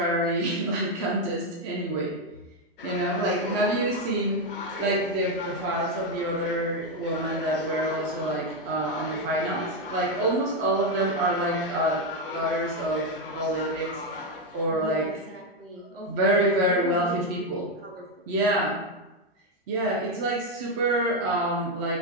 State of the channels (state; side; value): normal; both; correlation 0.06